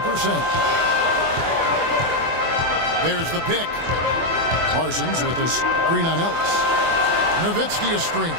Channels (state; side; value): late; left; 24 ms